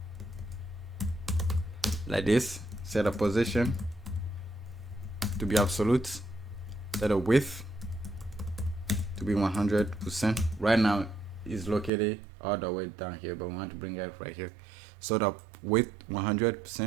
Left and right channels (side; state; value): left; drops out; at 11.9 s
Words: like this. Set a position to be absolute, set a width to be 100%. Right now is located all the way down here, but we want to bring it right here. So the width